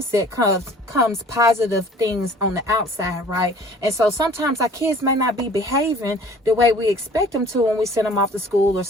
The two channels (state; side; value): normal; both; correlation 0.51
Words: comes positive things on the outside, right? And so sometimes our kids may not be behaving the way we expect them to when we send them off to school or